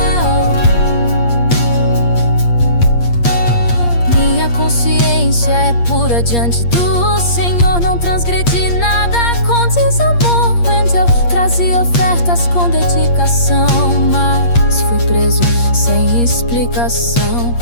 Minha consciência é pura diante do Senhor. Não transgredi nada com desamor. Eu trazia ofertas com dedicação, mas fui preso sem explicação.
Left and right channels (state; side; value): late; right; 8.5 ms